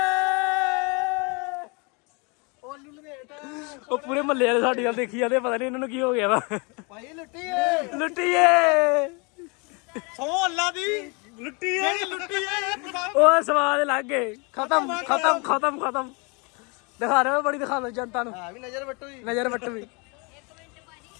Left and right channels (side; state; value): right; quieter; 31.1 dB